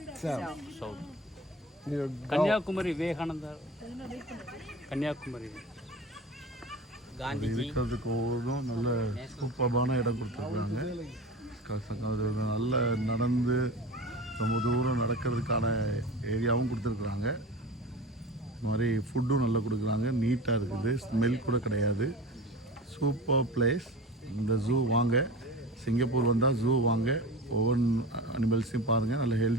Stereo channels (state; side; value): normal; both; correlation 0.33